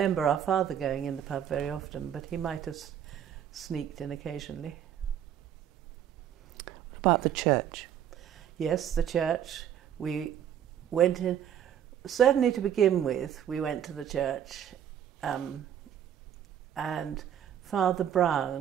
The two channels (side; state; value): left; quieter; 9.8 dB